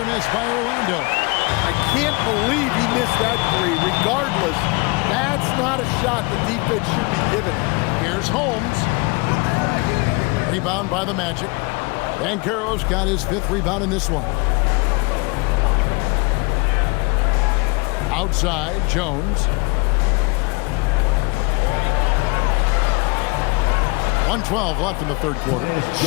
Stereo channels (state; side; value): quieter; right; 28.6 dB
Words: miss by Orlando. I can't believe he missed that three. Regardless, that's not a shot the defense should be giving him. Here's Holmes. Rebound by the Magic. Banchero's got his 5th rebound in this one. Outside, Jones. 1:12 left in the third quarter.